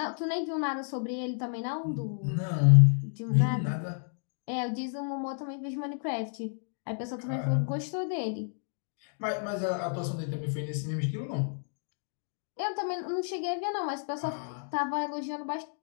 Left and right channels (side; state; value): right; silent; digital silence